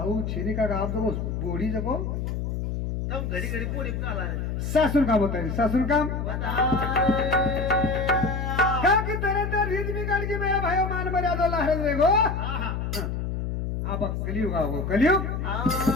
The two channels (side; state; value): left; noise; hum, 3 dB below the sound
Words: छेनी का आप जको बोडी जको तम घडी पोडी काला सासून काम होता है सासून काम क्या की तरह तर रीत बिगाड़ की मेरा भाइयों मान मर्यादा लहर रे गो आप कलियुग आओ कलियुग